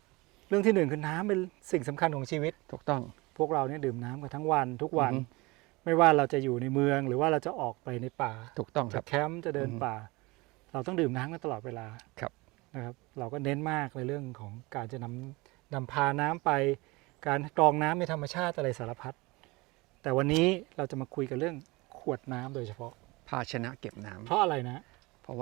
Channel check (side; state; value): left; quieter; 23.7 dB